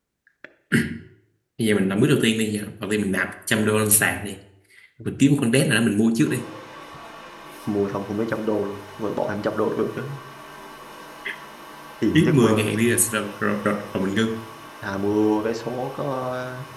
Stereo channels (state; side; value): identical; both; correlation 1.00